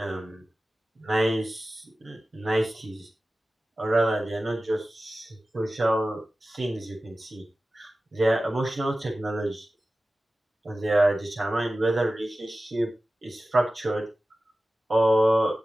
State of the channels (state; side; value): normal; both; correlation 0.95